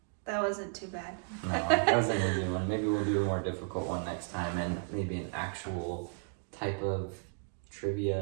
wasn't too bad. No, that was an easy one. Maybe we'll do a more difficult one next time, and maybe an actual type of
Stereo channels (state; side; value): silent; left; 55 dB below the other